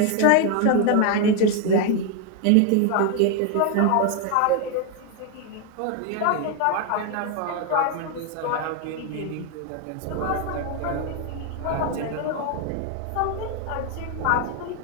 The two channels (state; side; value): different; both; correlation 0.01